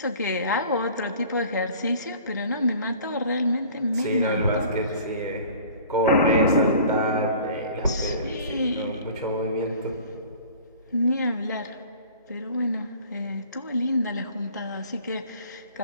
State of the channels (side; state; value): both; inverted; correlation -0.47